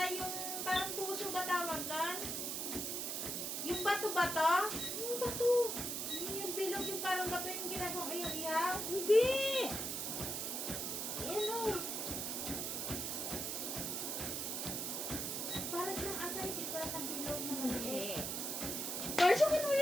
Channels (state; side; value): noise; right; hiss, 2 dB below the sound